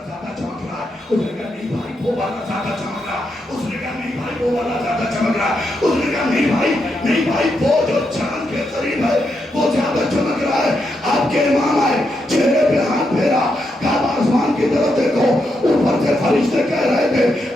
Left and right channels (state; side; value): normal; both; correlation 0.82